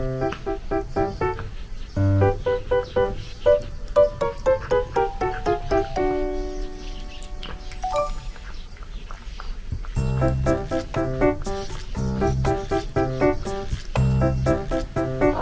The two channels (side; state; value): both; identical; correlation 1.00